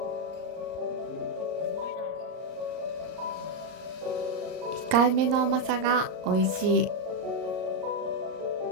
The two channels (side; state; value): left; late; 38 ms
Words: 控えめの甘さが美味しい